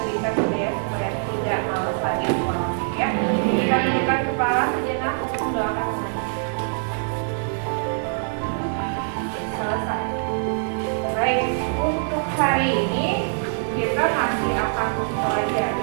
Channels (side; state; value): left; silent; digital silence